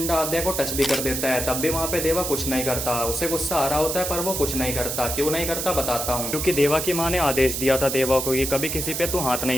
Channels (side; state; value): right; noise; hiss, 3 dB below the sound